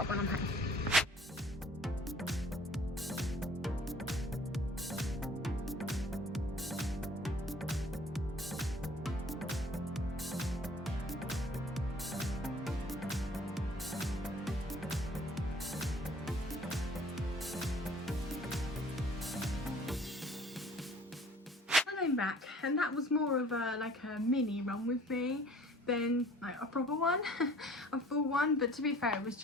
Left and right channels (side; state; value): both; normal; correlation 0.52